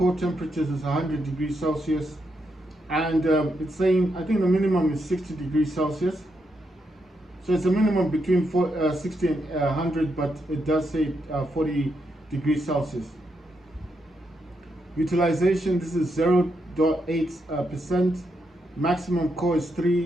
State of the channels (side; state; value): both; normal; correlation 0.81